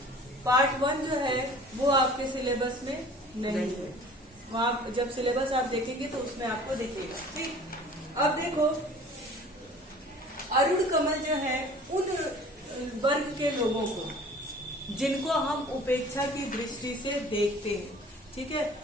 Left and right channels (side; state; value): both; normal; correlation 0.47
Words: पार्ट 1 जो है वो आपके सिलेबस में नहीं है, वहां जब सिलेबस आप देखेंगे तो उसमें आपको दिखेगा। ठीक, अब देखो अरुण कमल जो है उन वर्ग के लोगों को जिनको हम उपेक्षा की दृष्टि से देखते हैं, ठीक है,